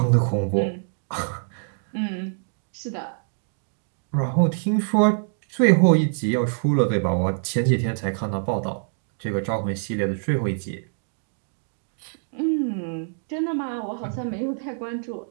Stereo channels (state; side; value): silent; left; digital silence